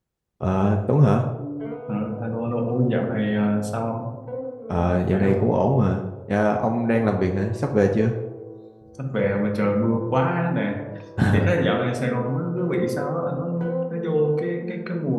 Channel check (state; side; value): identical; both; correlation 1.00